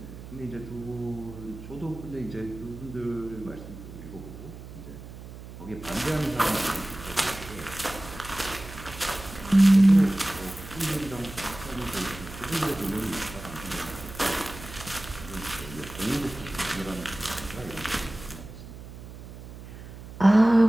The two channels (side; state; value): right; noise; hum, 14 dB below the sound